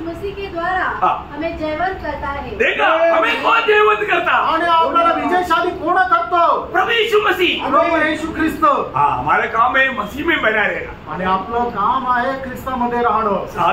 मसीह के द्वारा हमें जयवंत करता है। देखा हमें कौन जयवंत करता? आणि आपल्याला विजयशाली कोण करतो? प्रभु यीशु मसीह, प्रभू येशू ख्रिस्त। हाँ हमारा काम है मसीह में बना रहेगा, आणि आपलं काम आहे ख्रिस्तामध्ये राहणं,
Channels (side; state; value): both; identical; correlation 1.00